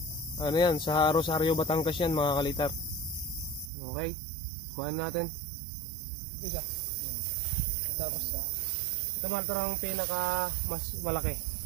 Ano yan, sa Rosario, Batangas yan mga kalitar. Okay, kuhaan natin. Isa. Tapos ito mga ang pinaka mas malaki.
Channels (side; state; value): left; drops out; at 3.7 s